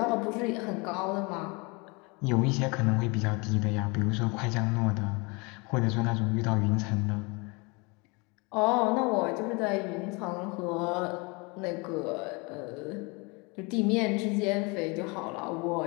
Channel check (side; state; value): right; quieter; 28.8 dB